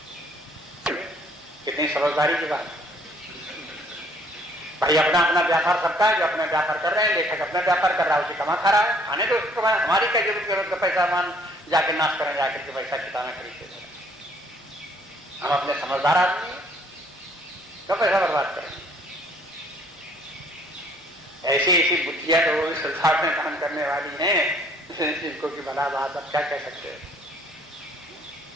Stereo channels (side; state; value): both; normal; correlation 0.61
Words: कितनी समझदारी की बात। भाई अपना अपना व्यापार करता है, जो अपना व्यापार कर रहे हैं, लेखक अपना व्यापार कर रहा है, उसे कमा खा रहा है, खाने तो उसको हमारी क्या जरूरत का पैसा मान जाके नाश करें, जाकर के पैसा किताबें खरीदते करें। हम अपने समझदार आदमी तो पैसा बर्बाद करें। ऐसी ऐसी बुद्धियां तो संसार में काम करने वाली हैं इनको की भला बात, अब क्या कह सकते हैं।